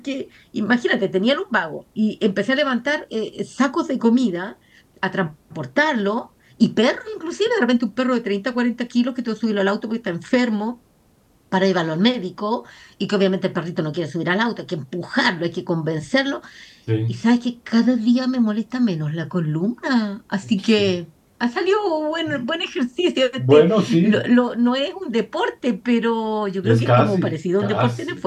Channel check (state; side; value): identical; both; correlation 1.00